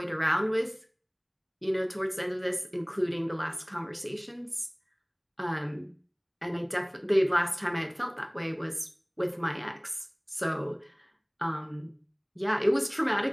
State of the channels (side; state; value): both; identical; correlation 1.00